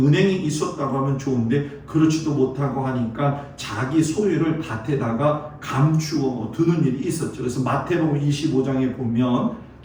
있었다고 하면 좋은데 그렇지도 못하고 하니까 자기 소유를 밭에다가 감추어 두는 일이 있었죠. 그래서 마태복음 25장에 보면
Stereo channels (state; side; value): identical; both; correlation 1.00